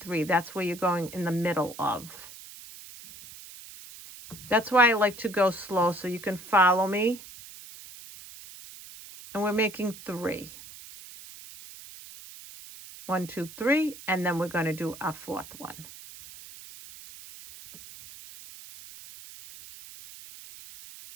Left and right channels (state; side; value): noise; right; hiss, 16 dB below the sound